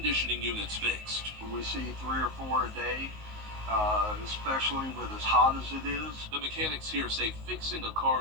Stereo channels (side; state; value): left; late; 19 ms